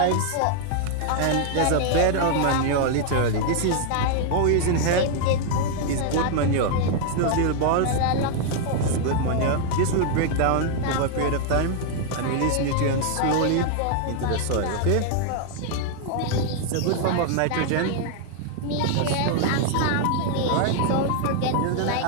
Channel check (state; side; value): different; both; correlation 0.00